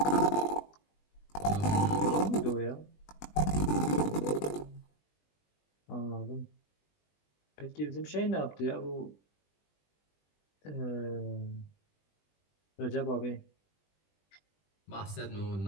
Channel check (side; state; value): right; late; 20 ms